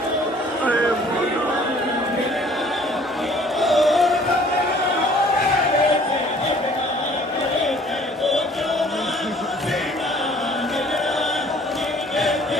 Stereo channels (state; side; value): normal; both; correlation 0.55